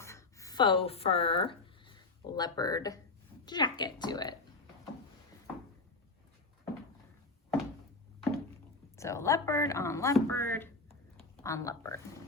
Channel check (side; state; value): right; quieter; 3.5 dB